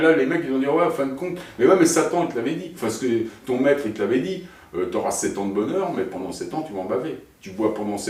les mecs, ils vont dire, ouais, en fin de compte, mais ouais, mais Satan, il te l'avait dit. Parce que ton maître, il te l'avait dit, tu auras 7 ans de bonheur, mais pendant 7 ans, tu vas en baver. Tu bois pendant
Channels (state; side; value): identical; both; correlation 1.00